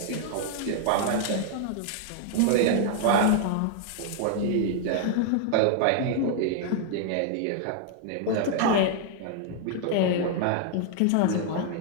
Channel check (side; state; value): both; different; correlation 0.00